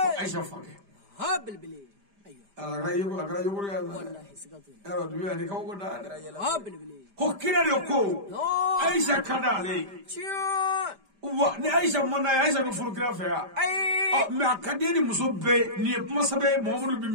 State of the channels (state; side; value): late; left; 5.0 ms